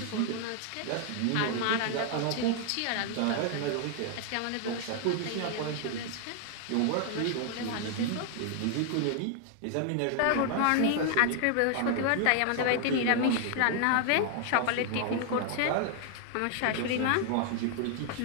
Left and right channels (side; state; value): both; different; correlation 0.00